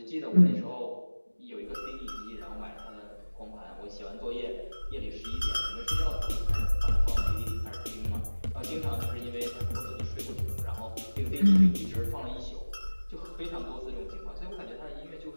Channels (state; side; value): inverted; both; correlation -1.00